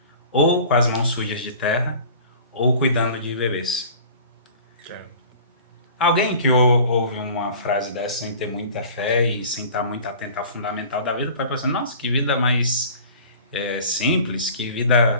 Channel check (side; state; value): both; inverted; correlation -0.44